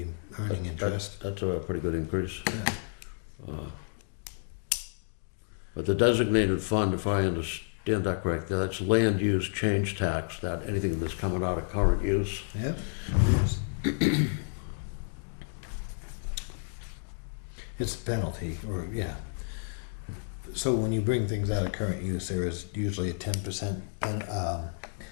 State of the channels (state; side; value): silent; right; digital silence